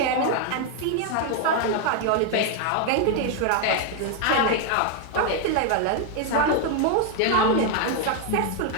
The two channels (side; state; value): both; different; correlation 0.01